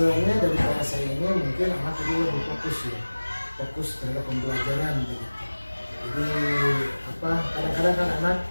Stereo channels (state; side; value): inverted; both; correlation -1.00